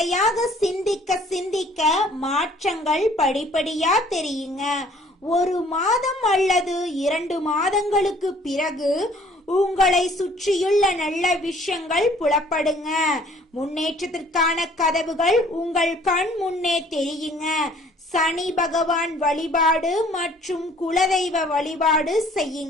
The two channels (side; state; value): both; normal; correlation 0.56